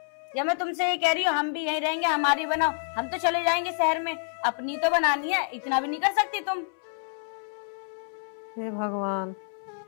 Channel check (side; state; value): right; silent; 60 dB below the other